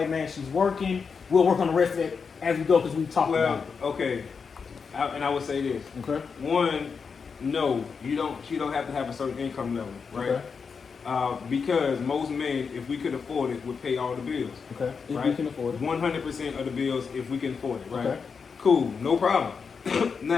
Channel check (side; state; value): right; quieter; 5.6 dB